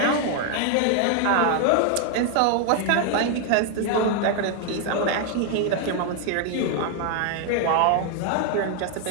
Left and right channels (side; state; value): both; different; correlation 0.00